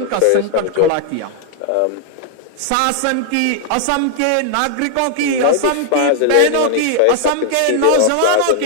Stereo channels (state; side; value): different; both; correlation -0.01